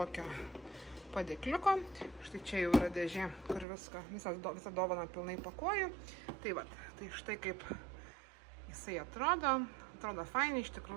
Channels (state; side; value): drops out; left; at 3.7 s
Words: padėkliuko, štai čia jau yra dėžė, kur visą dovaną pilnai pakuoju, tai va, tai štai kaip jisai atrodo fainiai, iš